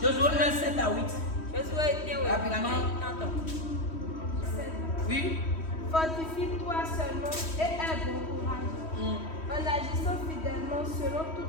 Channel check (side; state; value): right; late; 3.1 ms